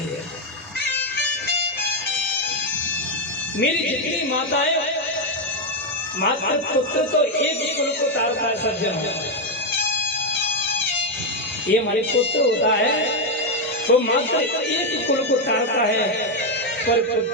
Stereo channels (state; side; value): normal; both; correlation 0.04